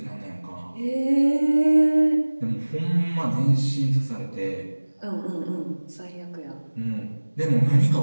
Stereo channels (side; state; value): both; inverted; correlation -1.00